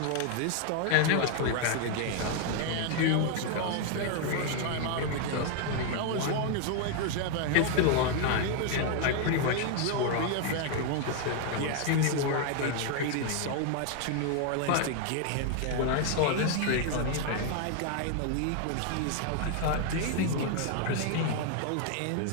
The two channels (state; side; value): different; both; correlation 0.00